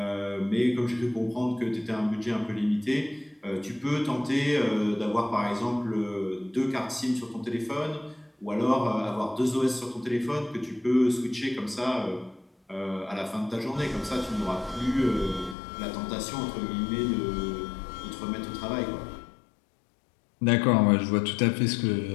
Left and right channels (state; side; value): drops out; right; at 15.6 s